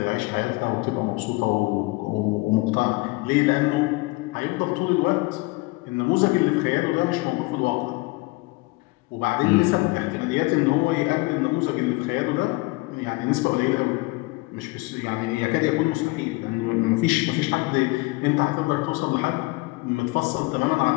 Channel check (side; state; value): right; quieter; 23.7 dB